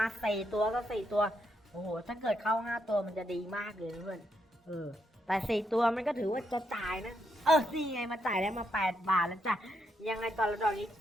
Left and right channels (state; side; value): normal; both; correlation 0.79